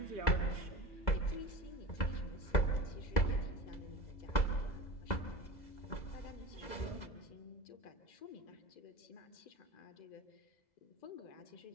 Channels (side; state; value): right; late; 2.0 ms